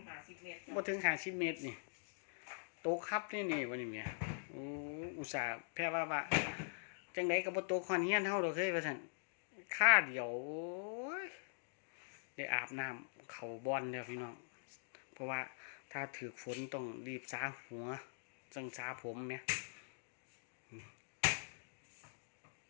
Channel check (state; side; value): silent; right; digital silence